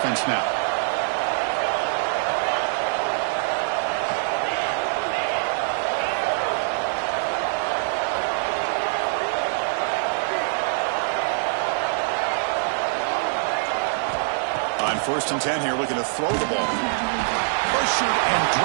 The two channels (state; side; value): silent; left; digital silence